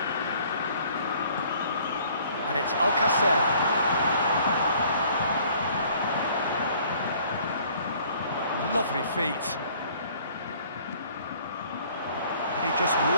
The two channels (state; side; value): inverted; both; correlation -0.57